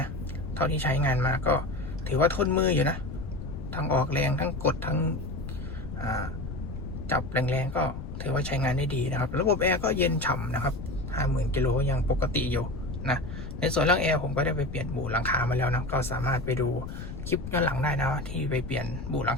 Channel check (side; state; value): left; noise; rumble, 8 dB below the sound